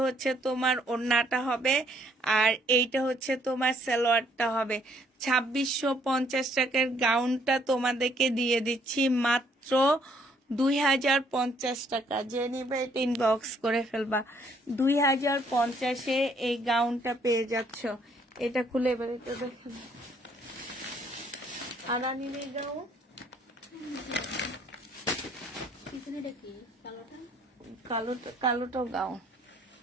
হচ্ছে তোমার ওড়নাটা হবে, আর এইটা হচ্ছে তোমার সালোয়ারটা হবে। 2650 টাকার গাউনটা তোমাদেরকে দিয়ে দিচ্ছি মাত্র 2050 টাকা। যে নিবে ইনবক্স করে ফেলবা। 2050-এ এই গাউনটা পেয়ে যাচ্ছ। এটা খুলে এবার এটা দেখো, আরানিনের গাউন, কালোটাও গাউন।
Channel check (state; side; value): normal; both; correlation 0.66